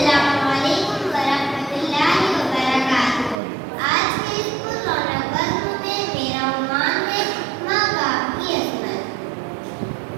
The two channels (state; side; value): drops out; left; at 3.4 s